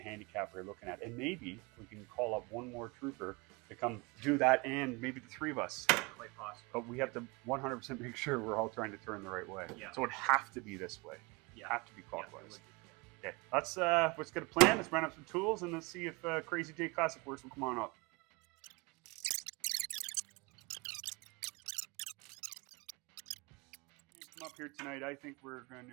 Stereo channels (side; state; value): left; quieter; 27.0 dB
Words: handicap we're looking at. And maybe we can call up one more trooper to come do that, and maybe the three of us. Quite possible. But we have to 100% make sure we're all trying to turn the right way. Yeah. So it'd have to be this way. Yeah. Have to be clockwise. Yeah, Okay, let's get a plan. Let's run up some tools, and let's see if Crazy J Classic Works will come on up. Come up here tonight. I think we're going